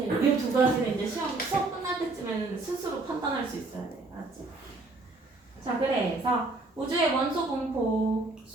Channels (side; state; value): left; quieter; 3.3 dB